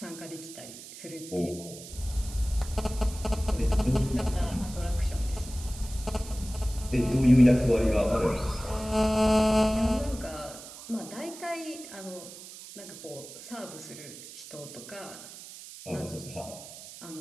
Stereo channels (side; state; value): right; noise; hiss, 15 dB below the sound